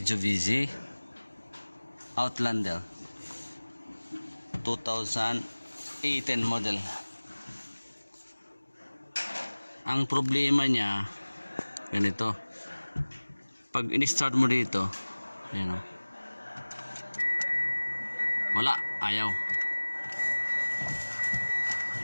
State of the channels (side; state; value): both; inverted; correlation -1.00